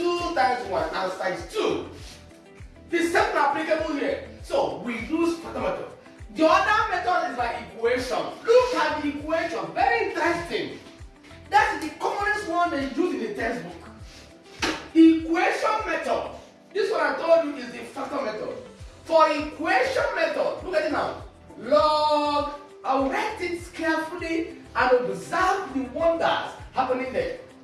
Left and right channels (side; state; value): both; identical; correlation 1.00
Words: times 1 answer is 2. The same applicable here. So we use factor method. The other method is by equation. Look at the equation. Very interesting. That's the commonest one they use in the textbook. Equation method. This one I told you is the factor method. For equation method, look at it now. Log, I'll write it carefully and observe the wonders happening there.